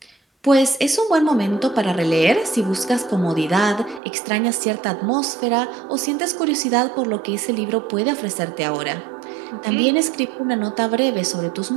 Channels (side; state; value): left; drops out; at 4.0 s